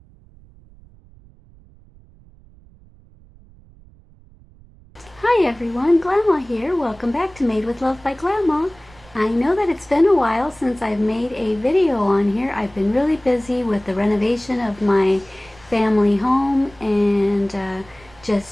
Hi everyone, Glama here. Welcome back to Made with Love by Glama. I know that it's been a while since I've made a video on here. I've been really busy with the renovation of my family home and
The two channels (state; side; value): noise; right; rumble, 25 dB below the sound